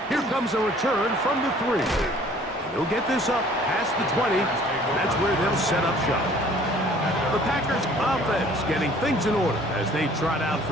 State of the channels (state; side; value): normal; both; correlation 0.54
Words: Here comes a return from the 3. He'll get this up past the 20. That's where they'll set up shop. The Packers offense getting things in order as they trot out